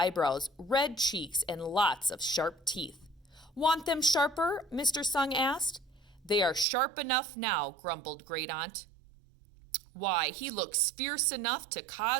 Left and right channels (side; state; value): left; drops out; at 6.7 s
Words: red cheeks, and lots of sharp teeth. "Want them sharper?" Mr. Sung asked. "They are sharp enough now," grumbled Great Aunt. "Why, he looks fierce enough to